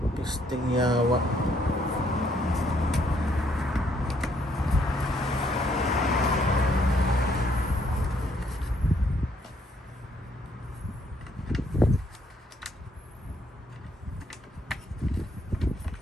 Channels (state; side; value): normal; both; correlation 0.69